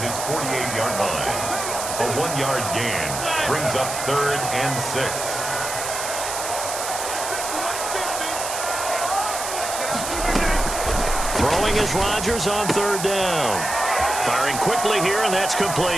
his 48-yard line. A 1-yard gain brings up 3rd and 6. Throwing is Rodgers on 3rd down. Firing quickly here, and that's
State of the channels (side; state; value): right; noise; hiss, 5 dB below the sound